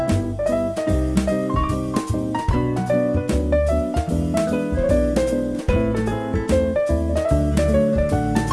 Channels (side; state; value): both; identical; correlation 1.00